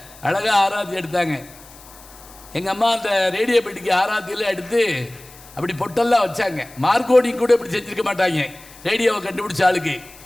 அழகாக ஆராத்தி எடுத்தாங்க. எங்கள் அம்மா அந்த ரேடியோ பெட்டிக்கு ஆராத்தியில் எடுத்து அப்படி பொட்டெல்லாம் வச்சாங்க. மார்க்கோடிங் கூட இப்படி செஞ்சுருக்க மாட்டாங்க ரேடியோவை கண்டுபிடிச்ச ஆளுக்கு.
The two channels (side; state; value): left; noise; hiss, 21 dB below the sound